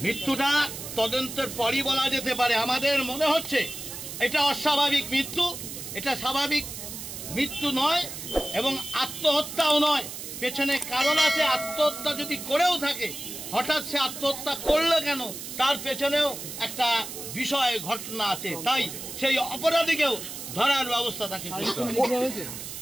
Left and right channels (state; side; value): noise; right; hiss, 9 dB below the sound